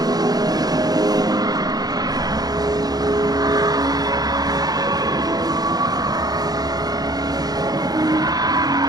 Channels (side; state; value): left; late; 0.19 ms